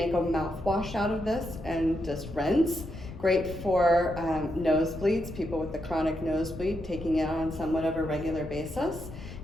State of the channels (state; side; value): noise; left; rumble, 12 dB below the sound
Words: a mouthwash out of this and just rinse. Great for nosebleeds, people with the chronic nosebleed, taking it on somewhat of a regular basis.